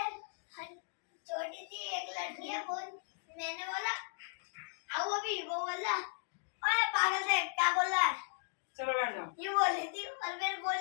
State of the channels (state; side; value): silent; right; digital silence